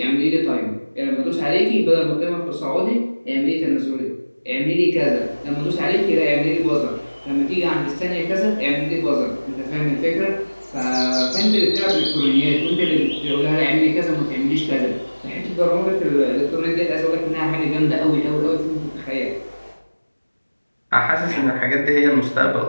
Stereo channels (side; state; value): both; inverted; correlation -1.00